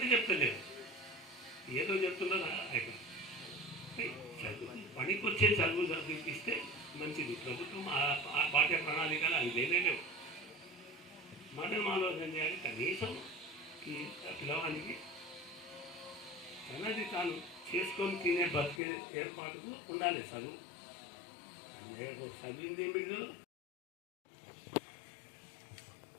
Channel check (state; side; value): drops out; right; at 18.8 s